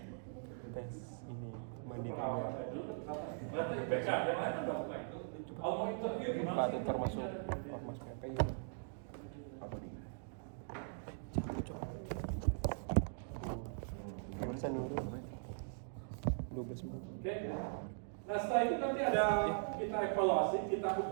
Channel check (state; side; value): silent; left; digital silence